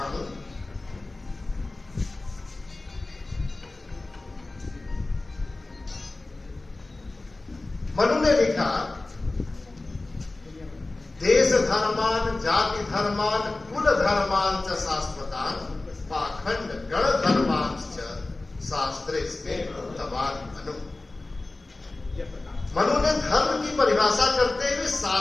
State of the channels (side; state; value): right; quieter; 3.1 dB